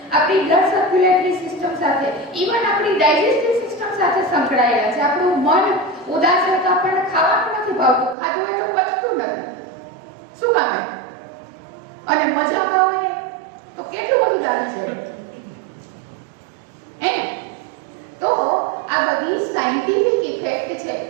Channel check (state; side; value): drops out; left; at 8.2 s